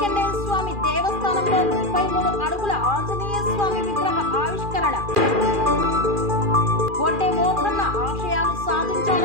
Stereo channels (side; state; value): left; late; 2.4 ms